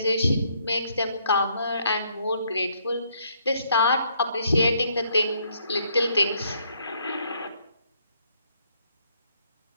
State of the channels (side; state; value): both; inverted; correlation -0.70